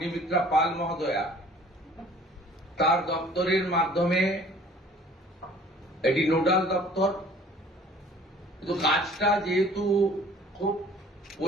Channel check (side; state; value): both; normal; correlation 0.52